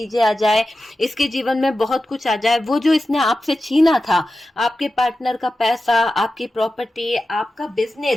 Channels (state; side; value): normal; both; correlation 0.93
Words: आ जाए, इसके जीवन में बहुत कुछ आ जाए, वो जो इसने आपसे छीना था, आपके पार्टनर का पैसा, आपकी प्रॉपर्टी, आपका